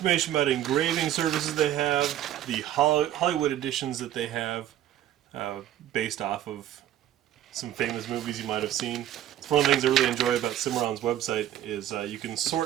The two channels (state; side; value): quieter; left; 12.1 dB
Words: about engraving services they have, the Hollywood editions that they have, based off of some famous movies you might have seen. It's one of the things I really enjoy about Cimarron's website is you can